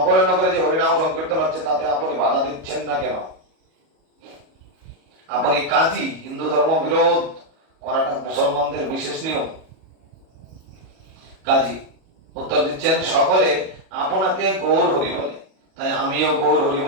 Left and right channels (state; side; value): late; left; 37 ms